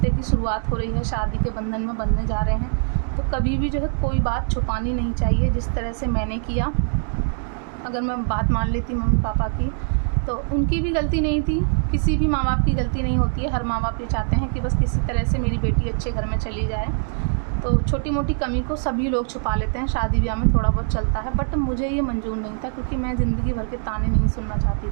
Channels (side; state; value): left; silent; digital silence